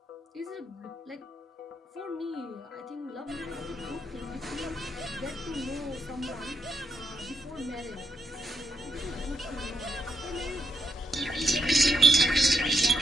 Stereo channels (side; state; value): both; normal; correlation 0.78